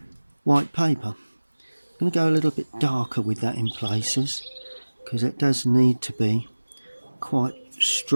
white paper. I'm going to go a little bit darker with that in places, because it does need to be quite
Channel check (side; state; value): both; inverted; correlation -1.00